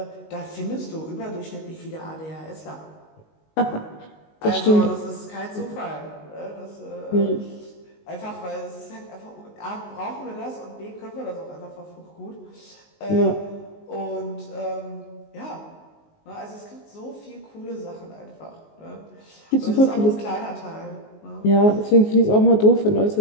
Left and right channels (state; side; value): late; right; 19 ms